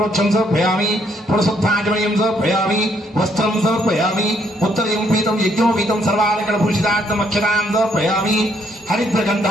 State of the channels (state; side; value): normal; both; correlation 0.70